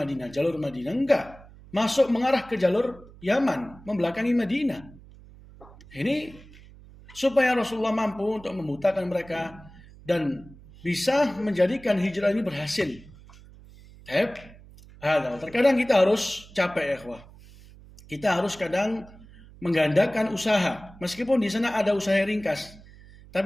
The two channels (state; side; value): noise; right; hum, 21 dB below the sound